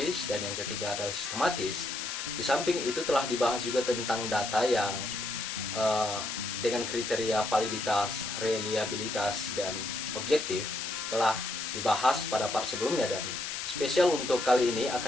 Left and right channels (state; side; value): noise; left; hiss, 4 dB below the sound